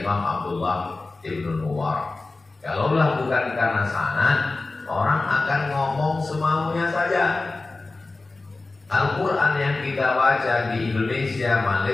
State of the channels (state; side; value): quieter; right; 3.4 dB